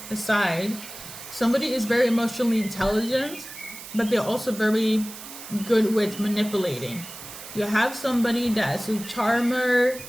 aside, somebody is very emotionally intelligent, but they're also very good with manipulating. You have somebody that's a charmer,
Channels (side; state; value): right; noise; hiss, 13 dB below the sound